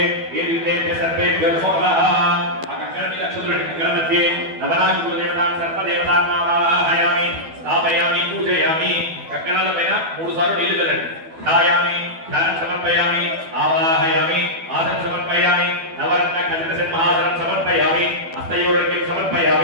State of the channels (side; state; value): left; late; 12 ms